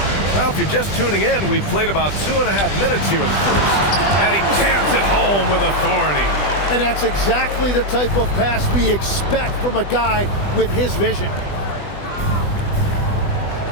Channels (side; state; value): right; late; 20 ms